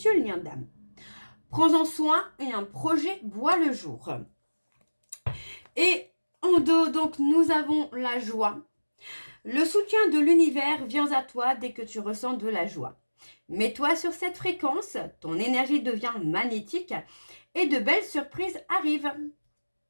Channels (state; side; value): inverted; both; correlation -1.00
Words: lien d'âme. Prends-en soin et un projet voit le jour. Et en dos, donc, nous avons la joie. Le soutien de l'univers vient à toi dès que tu ressens de la joie. Mets-toi sur cette fréquence, ton énergie devient magnétique et de belles surprises arrivent.